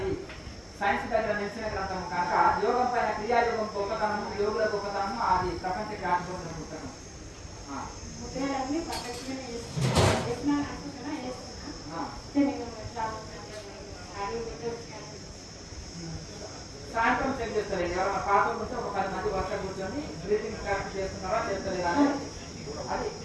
సైన్స్ దగ్గర నిలిచిన గ్రంథం కనుక యోగం పైన క్రియాయోగం గొప్పతనము, యోగుల గొప్పతనము అది ప్రపంచ జ్ఞాపకం పుస్తకం. సాయంత్రం చెక్ చేస్తారు. ఎవరైనా పాత ఉంటే ఒక 10 మంది వర్ష కూర్చొని బ్రీతింగ్ ప్రాక్టీస్ చేస్తున్నారా చేస్తలేదా అని అది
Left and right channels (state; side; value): identical; both; correlation 1.00